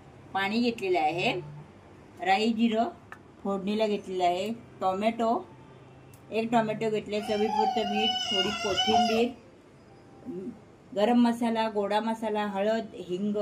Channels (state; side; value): identical; both; correlation 1.00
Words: पाणी घेतलेले आहे, राई जिरं फोडणीला घेतलेलं आहे, एक टोमॅटो घेतले, चवीपुरतं मीठ, थोडी कोथिंबीर, गरम मसाला, गोडा मसाला, हळद, हिंग